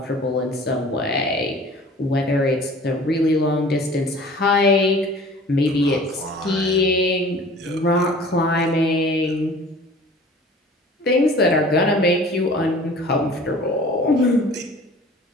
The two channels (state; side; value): normal; both; correlation 0.46